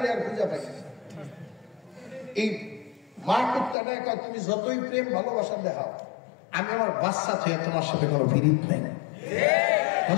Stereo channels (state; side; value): drops out; right; at 3.8 s